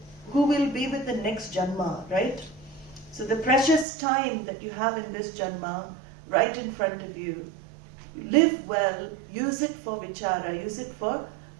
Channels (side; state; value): left; drops out; at 3.9 s